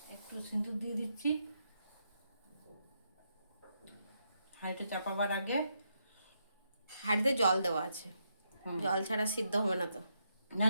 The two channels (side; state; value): both; inverted; correlation -0.80